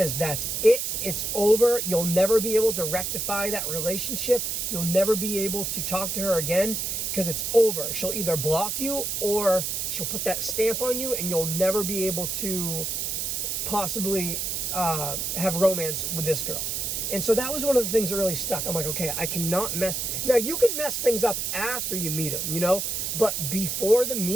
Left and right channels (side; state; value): right; noise; hiss, 1 dB below the sound